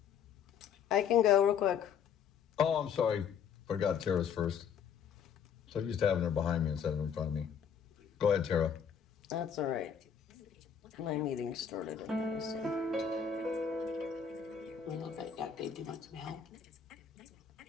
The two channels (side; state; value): right; quieter; 7.5 dB